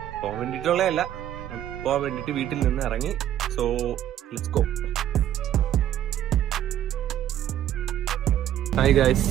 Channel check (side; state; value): left; quieter; 11.5 dB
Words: വീട്ടിൽ നിന്ന് ഇറങ്ങി. So let's go. Hi guys,